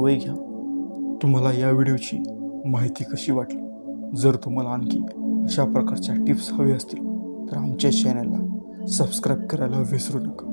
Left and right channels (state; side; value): inverted; both; correlation -1.00